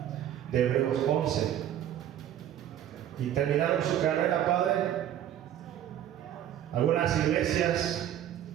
de Hebreos 11 y terminaron su carrera, Padre. Algunas iglesias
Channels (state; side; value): quieter; left; 11.1 dB